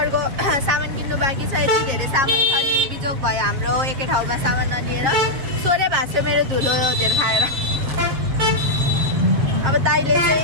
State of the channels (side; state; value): left; late; 7.4 ms